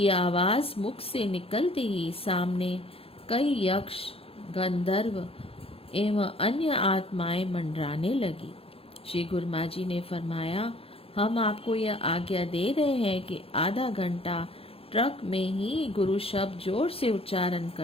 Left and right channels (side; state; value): right; late; 0.27 ms